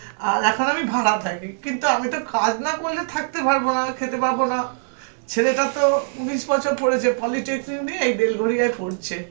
আর এখন আমি ভাড়া থাকি। কিন্তু আমি তো কাজ না করলে থাকতে পারবো না, খেতে পারবো না। ছেলেটা তো 19 বছর পড়েছে, পলিটেকনিক নিয়ে এই বেলঘড়িয়ায় পড়ছে।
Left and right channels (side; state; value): left; silent; digital silence